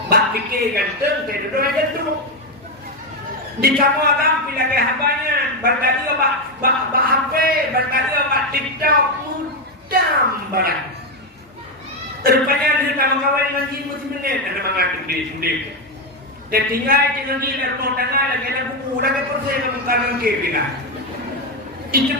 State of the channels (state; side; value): normal; both; correlation 0.07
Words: Bak fikir ganteng. Tadi orang gantung. Di kamu agam pilih ke habanya, bertadi apa HP, bertadi apa TikTok, mudam barang. Rupanya di kamu kawan ngaji mesti menit, ada mengatur di sini. Dan tinggal dia rumah tangga lagi ada buku, lagi persen kamu kanan ke bila. Itu